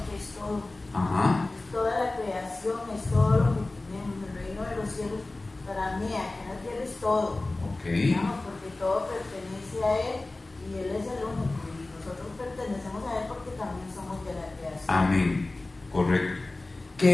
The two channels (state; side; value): quieter; right; 3.0 dB